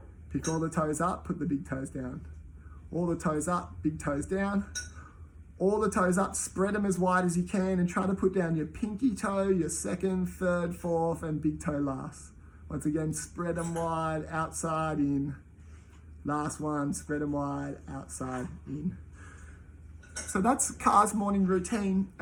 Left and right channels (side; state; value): both; identical; correlation 1.00